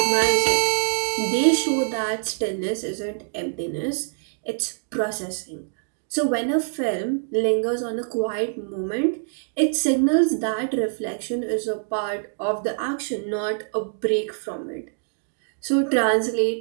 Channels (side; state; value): left; silent; digital silence